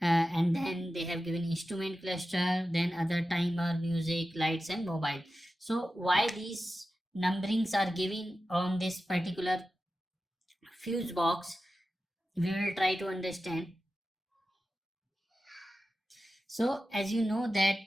and then they have given instrument cluster, then other timer, music, lights and mobile. So why these numberings are given on this particular fuse box, we will try to understand. So as you know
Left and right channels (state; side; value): normal; both; correlation 0.93